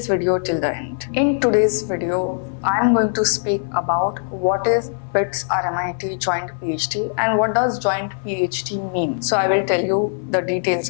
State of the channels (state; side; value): silent; right; 60 dB below the other